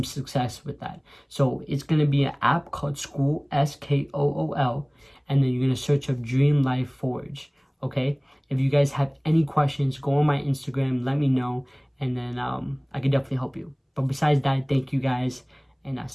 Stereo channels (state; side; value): identical; both; correlation 1.00